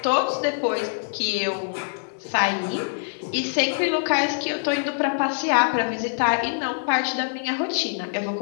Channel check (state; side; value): silent; right; digital silence